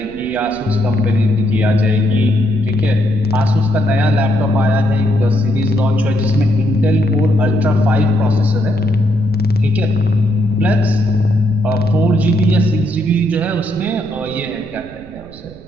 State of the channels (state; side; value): noise; right; rumble, 20 dB below the sound